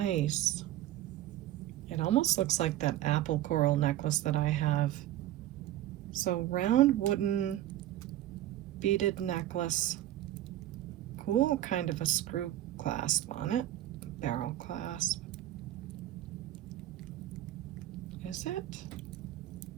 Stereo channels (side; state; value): left; quieter; 13.6 dB